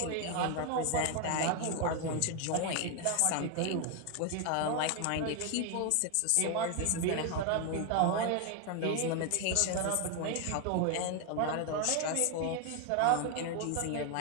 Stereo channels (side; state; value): both; different; correlation 0.01